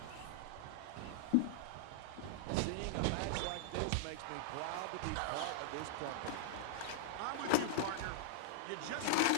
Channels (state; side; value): different; both; correlation -0.01